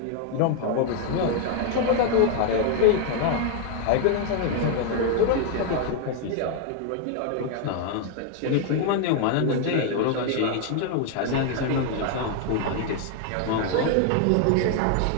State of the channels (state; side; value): different; both; correlation 0.00